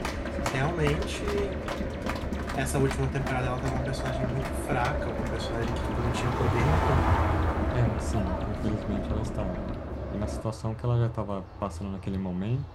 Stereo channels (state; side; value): identical; both; correlation 1.00